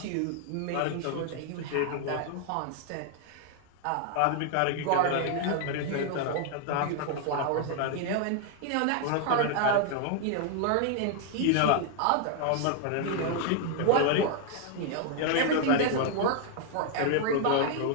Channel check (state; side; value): different; both; correlation 0.00